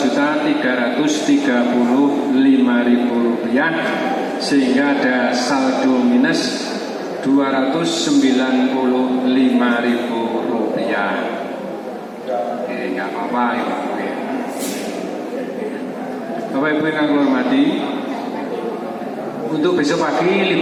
sehingga ada saldo minus Rp295.000. Nggak apa-apa ya. Bapak Ibu yang kami hormati, untuk besok pagi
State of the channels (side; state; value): both; identical; correlation 1.00